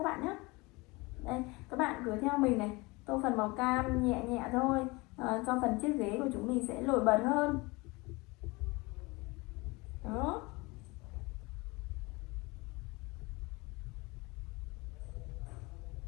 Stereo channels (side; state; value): right; quieter; 24.6 dB